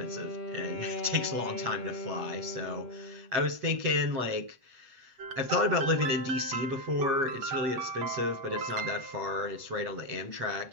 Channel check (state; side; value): late; left; 8.1 ms